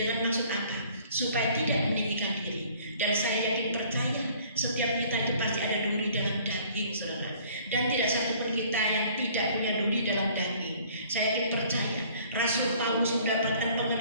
maksud apa? Supaya tidak meninggikan diri. Dan saya yakin percaya setiap kita itu pasti ada duri dalam daging, saudara. Dan tidak satupun kita yang tidak punya duri dalam daging. Saya yakin percaya Rasul Paulus mendapatkan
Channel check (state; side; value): inverted; both; correlation -0.55